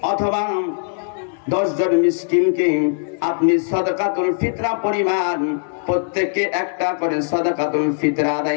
অথবা 10 জন মিসকিনকে আপনি সাদাকাতুল ফিতরা পরিমাণ প্রত্যেককে একটা করে সাদাকাতুল ফিতরা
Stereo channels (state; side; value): silent; right; digital silence